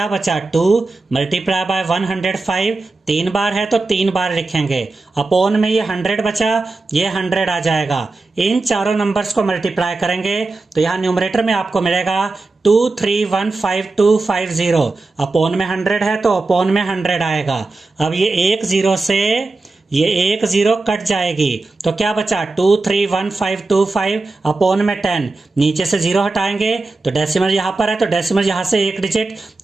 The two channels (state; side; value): quieter; left; 3.4 dB